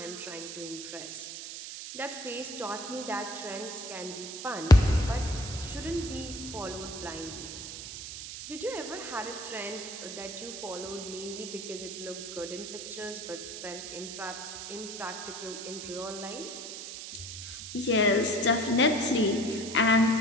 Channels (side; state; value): right; noise; hiss, 8 dB below the sound